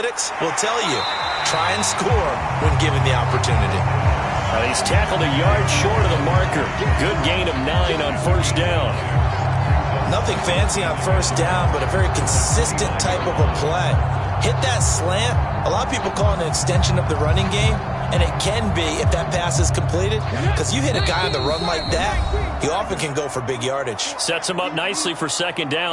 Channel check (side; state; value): both; identical; correlation 1.00